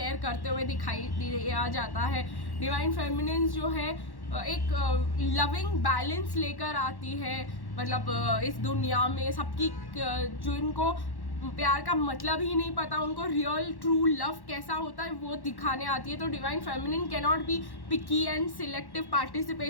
करते हुए दिखाई दिया जाता है। डिवाइन फेमिनिन जो है एक लविंग बैलेंस लेकर आती है, मतलब इस दुनिया में सबकी, जो इनको प्यार का मतलब ही नहीं पता, उनको रियल ट्रू लव कैसा होता है वो दिखाने आती है। तो divine feminine can not be picky and selective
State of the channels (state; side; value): late; right; 1.1 ms